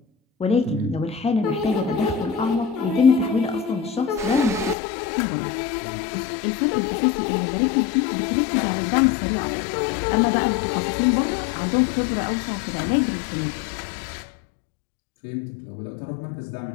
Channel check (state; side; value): drops out; right; at 4.8 s